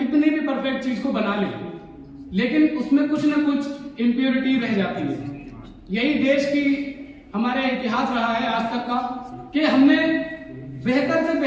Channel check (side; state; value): both; identical; correlation 1.00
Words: भी परफेक्ट चीज को बना लें, लेकिन उसमें कुछ ना कुछ इम्प्योरिटी रह जाती है। यही देश की हमारे इतिहास रहा है आज तक का, कि हमने बेहतर से